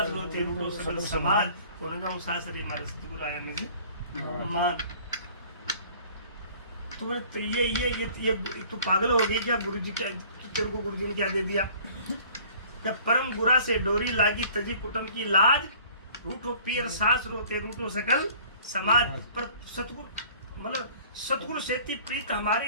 होते रूटो सकल समाज, कोने जाऊं सासरे हमारे सतगुरु आया मुझे मान। तो बोले तो ये तू पागल हो गई क्या? गुरु जी क्या तेरे को गुरु जी ने क्या दे दिया? क्या परम गुरा से डोरी लागी तजी कुटुंब की लाज, रूठो पीर सास रोते रूठो सकल समाज। पर सतगुरु मतलब सतगुरु सेती प्रीत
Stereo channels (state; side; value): inverted; both; correlation -0.51